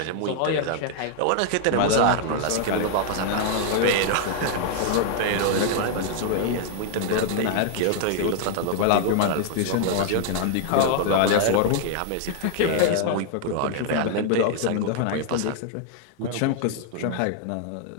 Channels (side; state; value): both; different; correlation 0.00